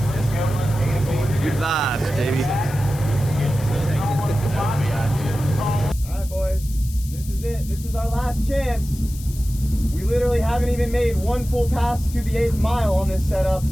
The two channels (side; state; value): left; noise; hiss, 17 dB below the sound